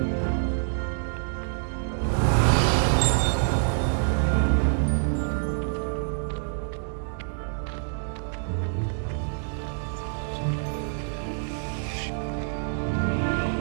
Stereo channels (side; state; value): left; silent; 60 dB below the other